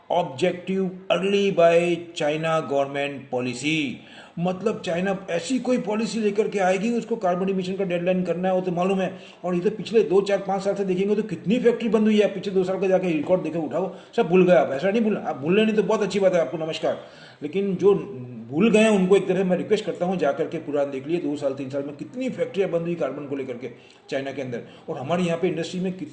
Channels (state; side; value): identical; both; correlation 1.00